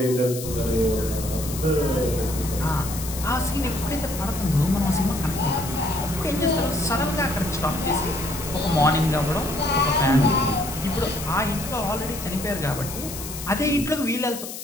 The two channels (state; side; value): noise; left; hiss, 9 dB below the sound